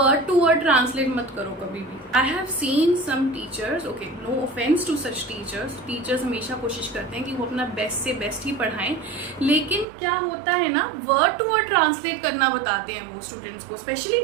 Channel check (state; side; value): drops out; left; at 9.9 s